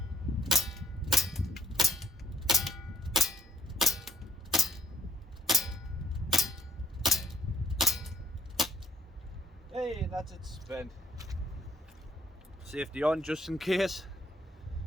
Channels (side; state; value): both; normal; correlation 0.68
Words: Hey, that's it spent. Safety on just in case.